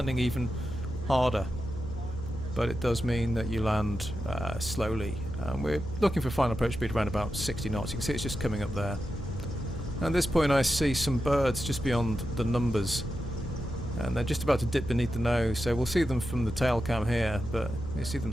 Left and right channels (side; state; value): left; noise; hum, 12 dB below the sound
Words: even harder. But it does mean that you land slowly. We're looking for final approach speed around about 60 knots. You can see it's just coming up there. At this point I see some birds just beyond the numbers, and they're just about to dip beneath the nose, so we'll see them from the tail cam here, but you see them